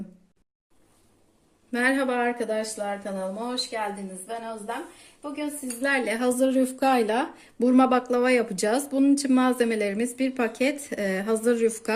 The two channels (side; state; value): both; identical; correlation 1.00